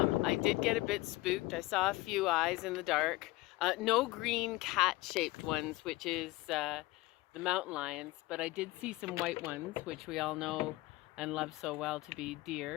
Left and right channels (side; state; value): right; quieter; 20.0 dB